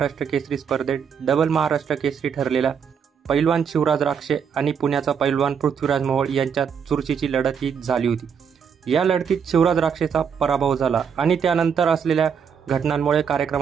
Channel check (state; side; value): quieter; left; 7.0 dB